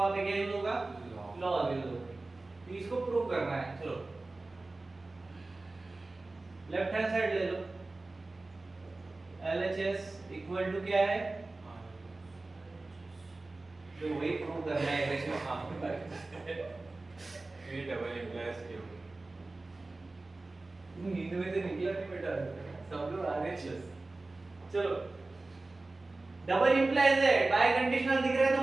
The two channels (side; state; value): left; quieter; 3.2 dB